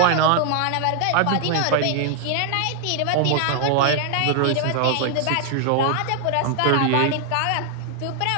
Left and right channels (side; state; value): both; different; correlation 0.00